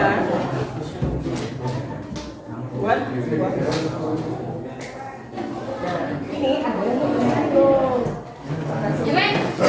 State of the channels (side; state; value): both; identical; correlation 1.00